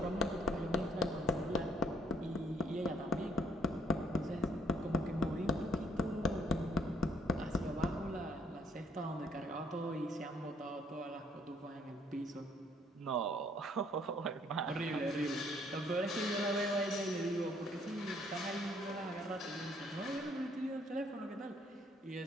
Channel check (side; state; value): both; normal; correlation 0.65